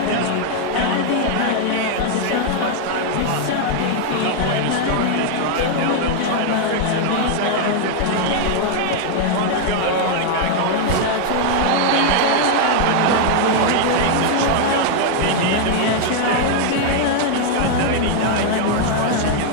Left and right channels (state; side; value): different; both; correlation 0.00